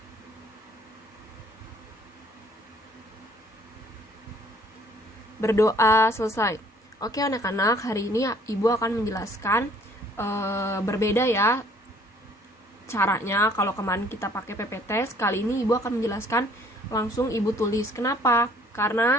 Berdoa selesai. Oke anak-anak, hari ini ibu akan menjelaskan berbeda ya caranya. Kalau kemarin kita pakai PPT, kali ini ibu akan menjelaskan langsung ibu tulis. Kenapa?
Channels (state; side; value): normal; both; correlation 0.58